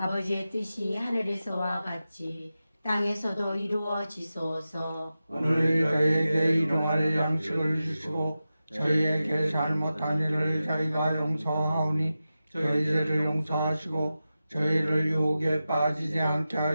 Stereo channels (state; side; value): inverted; both; correlation -0.93